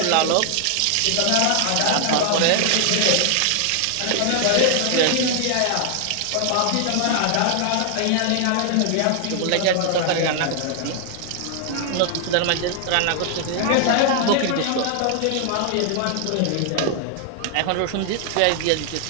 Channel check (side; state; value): both; different; correlation 0.00